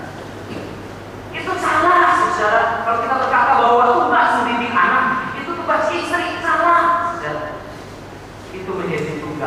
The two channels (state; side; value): identical; both; correlation 1.00